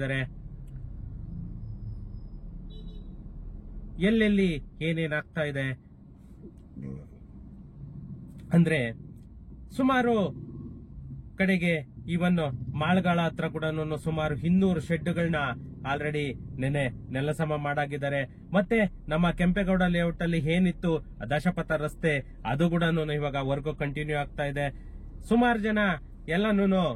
ಎಲ್ಲೆಲ್ಲಿ ಏನೇನಾಗ್ತಾ ಇದೆ ಅಂದ್ರೆ ಸುಮಾರು ಕಡೆಗೆ ಇವನ್ ಮಾಳ್ಗಾಳ ಹತ್ರ ಕೂಡ ಸುಮಾರು 200 ಶೆಡ್ಗಳನ್ನ ಆಲ್ರೆಡಿ ನೆಲಸಮ ಮಾಡಾಗಿದ್ದಾರೆ. ಮತ್ತೆ ನಮ್ಮ ಕೆಂಪೇಗೌಡ ಲೇಔಟ್ ಅಲ್ಲಿ ಏನಿತ್ತು ದಶಪಥ ರಸ್ತೆ ಅದು ಕೂಡ ಇವಾಗ ವರ್ಕ್ ಕಂಟಿನ್ಯೂ ಆಗ್ತಾ ಇದೆ. ಸುಮಾರು ಜನ ಎಲ್ಲಾನು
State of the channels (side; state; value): both; identical; correlation 1.00